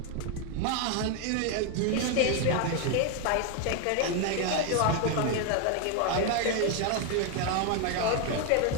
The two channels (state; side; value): different; both; correlation 0.01